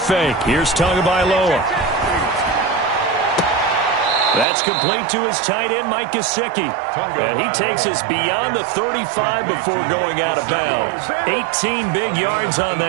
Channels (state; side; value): drops out; left; at 4.5 s